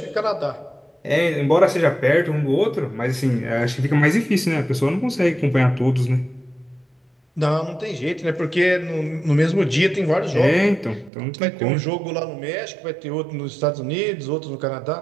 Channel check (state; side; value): drops out; left; at 11.1 s